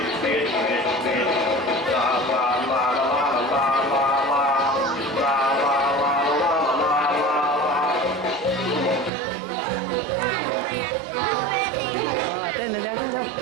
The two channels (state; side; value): drops out; left; at 9.1 s